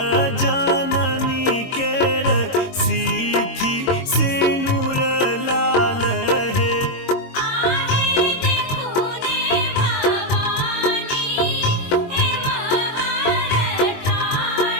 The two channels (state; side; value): late; right; 22 ms